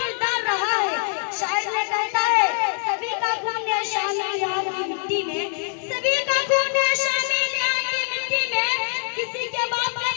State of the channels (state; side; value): silent; right; 63 dB below the other